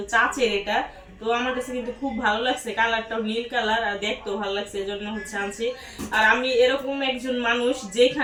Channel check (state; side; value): identical; both; correlation 1.00